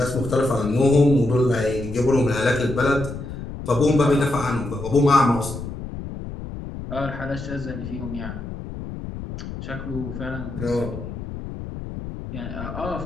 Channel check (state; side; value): noise; left; rumble, 9 dB below the sound